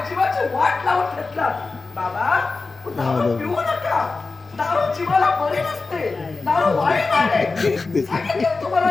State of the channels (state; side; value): quieter; right; 3.9 dB